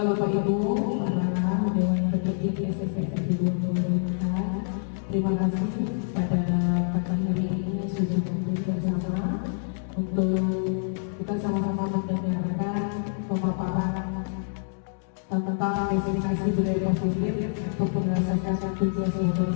Bapak Ibu, para Dewan Petinggi SMP Negeri 2024, terima kasih pada pagi hari ini sudah hadir bersama untuk kita sama-sama mendengarkan pemaparan tentang presentasi budaya positif untuk menyelesaikan tugas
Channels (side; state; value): right; silent; digital silence